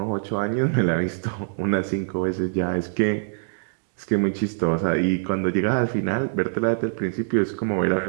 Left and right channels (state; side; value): silent; left; digital silence